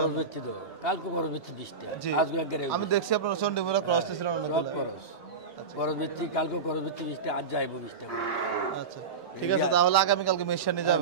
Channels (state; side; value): quieter; left; 5.0 dB